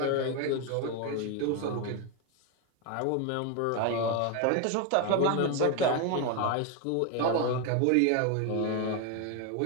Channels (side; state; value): both; different; correlation 0.01